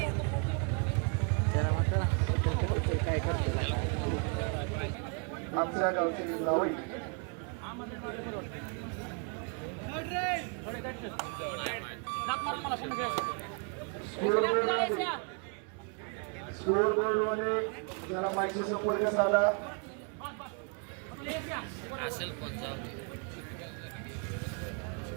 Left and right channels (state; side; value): quieter; left; 37.9 dB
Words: काय करतो आमच्या गावची जावई लाथ मारून मला पुन्हा स्कोर बोर्डमध्ये जरा माहिती संपर्क साधा. असेल पण जाऊ